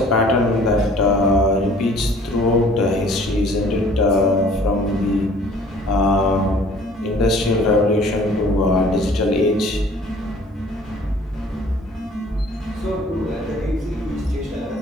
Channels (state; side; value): normal; both; correlation 0.53